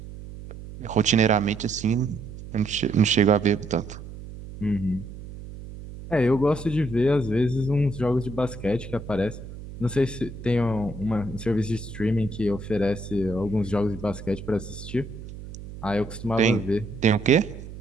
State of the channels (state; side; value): noise; right; hum, 13 dB below the sound